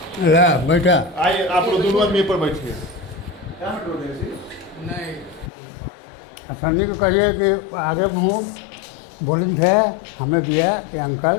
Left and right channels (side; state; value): right; drops out; at 5.5 s